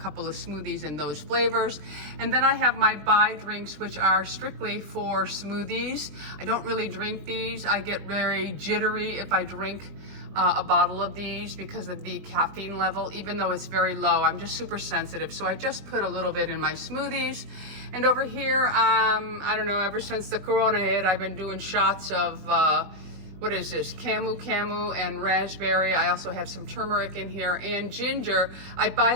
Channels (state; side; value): late; left; 20 ms